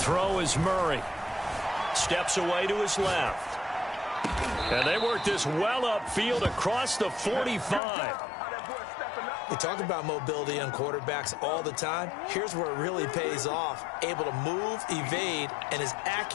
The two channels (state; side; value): drops out; right; at 7.8 s